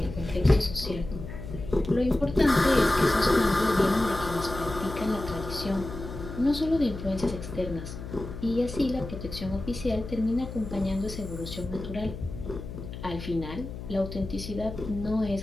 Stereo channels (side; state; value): left; noise; hum, 10 dB below the sound